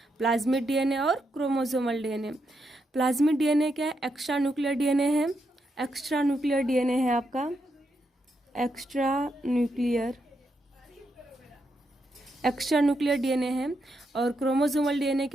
प्लाज्मिड डीएनए और क्रोमोसोमल डीएनए। प्लाज्मिड डीएनए क्या है, एक्स्ट्रा न्यूक्लियर डीएनए है। एक्स्ट्रा न्यूक्लियर डीएनए है आपका, एक्स्ट्रा न्यूक्लियर डीएनए है। और क्रोमोसोमल डीएनए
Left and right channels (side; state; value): both; normal; correlation 0.82